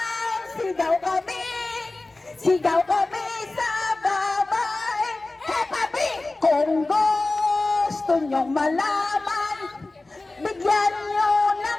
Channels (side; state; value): right; quieter; 3.1 dB